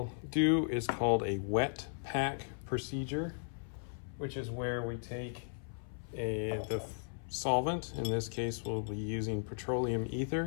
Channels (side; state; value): right; silent; 54 dB below the other